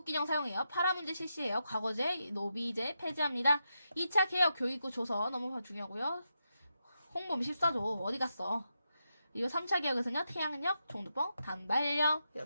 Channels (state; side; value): inverted; both; correlation -0.85